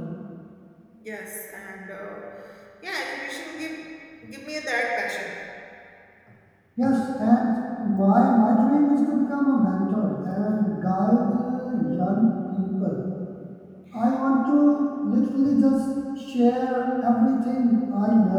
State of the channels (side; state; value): both; identical; correlation 1.00